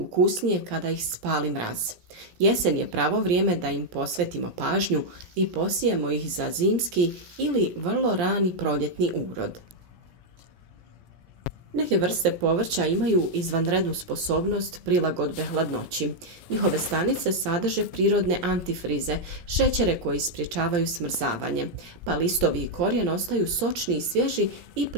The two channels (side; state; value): left; late; 17 ms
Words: kada ih spali mraz. Jesen je pravo vrijeme da im posvetimo pažnju i posijemo ih za zimski ili vrlo rani proljetni urod. Neke vrste povrća imaju izvanrednu sposobnost prilagodbe hladnoći. Njihove stanice sadrže prirodne antifrize, šećere koji sprječavaju smrzavanje, pa listovi i korijen ostaju sočni i svježi i